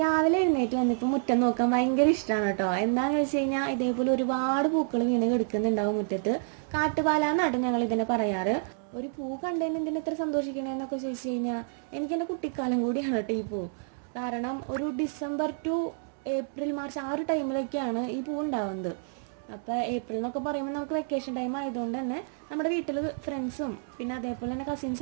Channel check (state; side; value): silent; left; digital silence